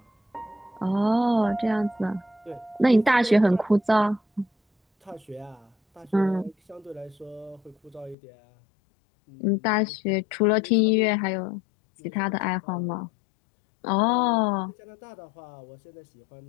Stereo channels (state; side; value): drops out; right; at 8.2 s